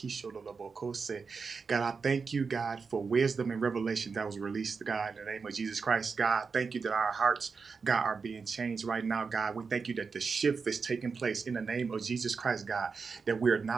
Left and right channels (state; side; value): quieter; left; 5.1 dB